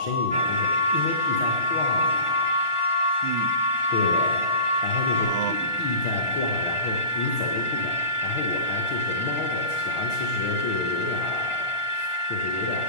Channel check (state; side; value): late; right; 1.4 ms